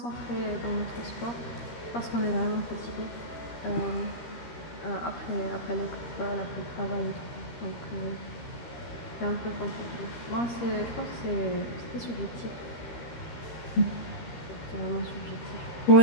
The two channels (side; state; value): right; late; 13 ms